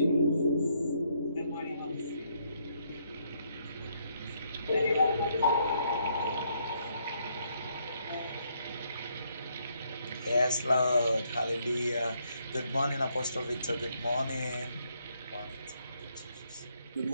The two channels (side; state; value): both; inverted; correlation -0.73